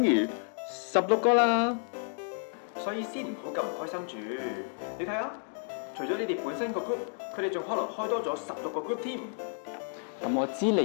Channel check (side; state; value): right; silent; 57 dB below the other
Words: 於16個啦。所以先唔好咁唔開心住。你睇下，除咗你哋本身個 group，佢哋仲可能開多咗16個 group 添。咁我知嚟